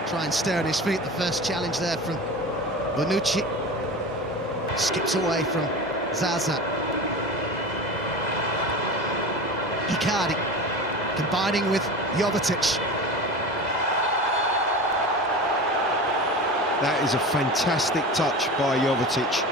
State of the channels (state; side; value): normal; both; correlation 0.31